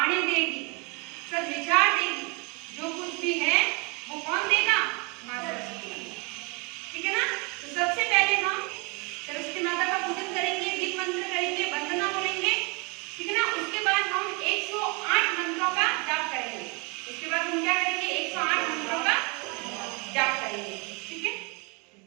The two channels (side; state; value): left; quieter; 30.6 dB